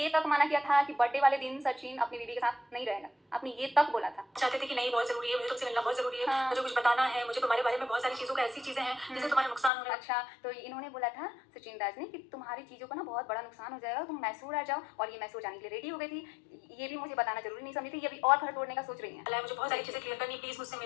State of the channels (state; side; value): drops out; right; at 9.7 s